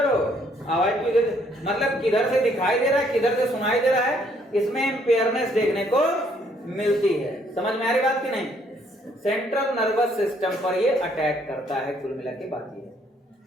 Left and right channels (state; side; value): normal; both; correlation 0.67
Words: हो, आवाज भी दे, मतलब किधर से दिखाई दे रहा है किधर से सुनाई दे रहा है, इसमें इंपेयरनेस देखने को मिलती है। समझ में आ रही बात की नहीं? सेंट्रल नर्वस सिस्टम पर ये अटैक करता है, कुल मिला के बात ये है,